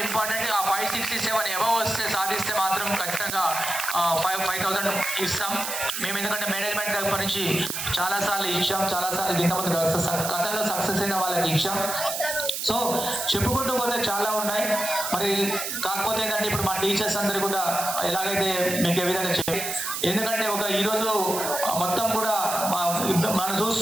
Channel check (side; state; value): right; noise; hiss, 4 dB below the sound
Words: ఇంపార్టెంట్. ఆ 567 ఎవో వస్తే సాధిస్తే మాత్రం ఖచ్చితంగా 5000 ఇస్తాం మేము. ఎందుకంటే మేనేజ్మెంట్ తరఫు నుంచి చాలాసార్లు ఇచ్చాం, చాలాసార్లు ఇంతమంది గతంలో సక్సెస్ అయిన వాళ్ళకి ఇచ్చాం. సో చెప్పుకుంటూ పోతే చాలా ఉన్నాయి. మరి కాకపోతే ఏంటంటే ఇప్పుడు మా టీచర్స్ అందరూ కూడా ఎలాగైతే మీకు ఏ విధంగా చెప్పి, ఎందుకంటే ఒక ఈరోజు మొత్తం కూడా మనం